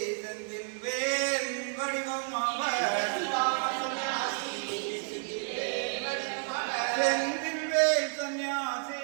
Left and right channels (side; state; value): left; silent; 57 dB below the other